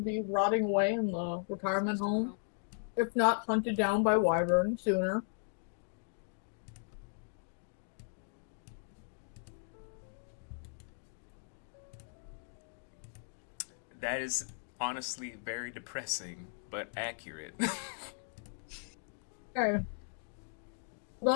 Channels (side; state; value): right; silent; digital silence